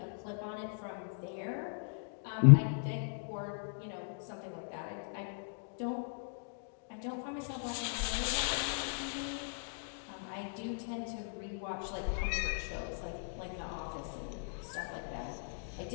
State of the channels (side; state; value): right; silent; digital silence